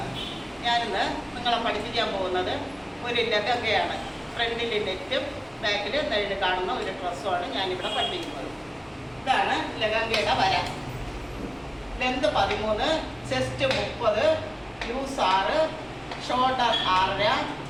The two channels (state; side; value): identical; both; correlation 1.00